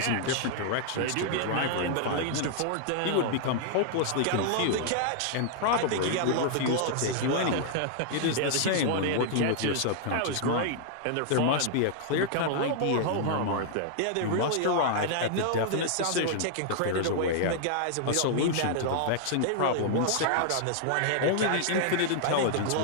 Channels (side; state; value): both; different; correlation -0.01